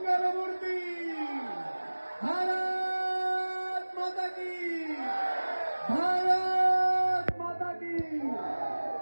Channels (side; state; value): both; inverted; correlation -1.00